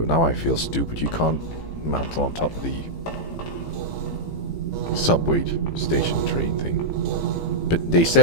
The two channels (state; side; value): late; right; 18 ms